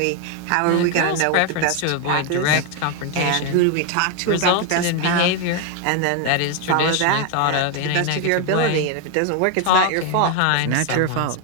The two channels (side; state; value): both; different; correlation 0.01